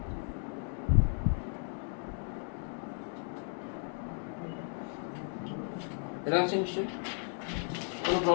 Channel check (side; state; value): right; silent; 55 dB below the other